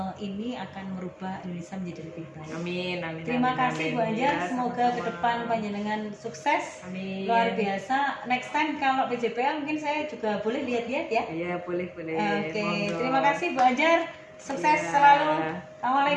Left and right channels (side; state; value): both; identical; correlation 1.00